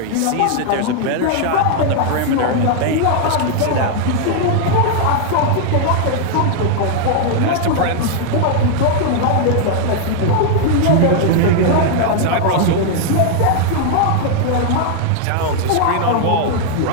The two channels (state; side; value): different; both; correlation 0.00